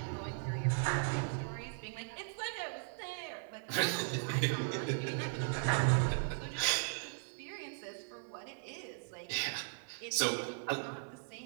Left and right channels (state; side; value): silent; left; digital silence